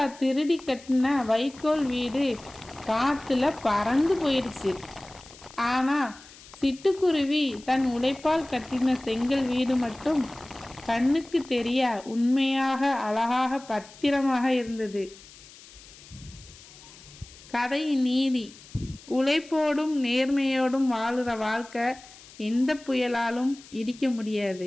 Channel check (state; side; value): noise; left; hiss, 21 dB below the sound